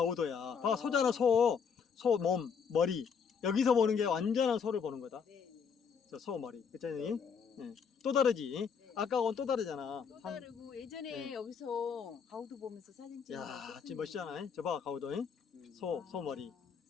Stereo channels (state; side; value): quieter; right; 6.4 dB